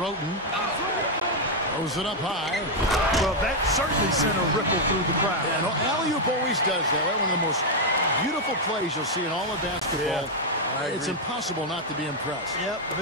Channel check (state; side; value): normal; both; correlation 0.00